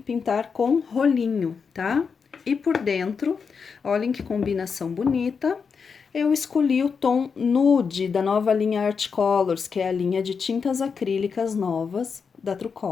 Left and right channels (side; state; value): right; quieter; 5.8 dB